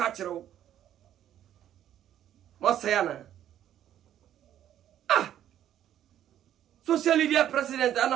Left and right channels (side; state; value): left; quieter; 11.2 dB